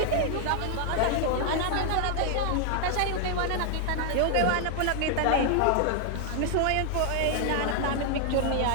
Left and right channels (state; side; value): different; both; correlation 0.00